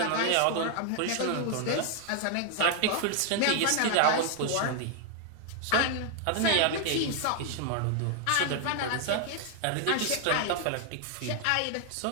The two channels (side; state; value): both; different; correlation 0.00